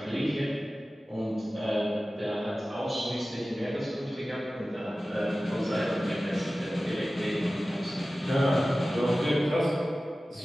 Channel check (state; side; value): normal; both; correlation 0.96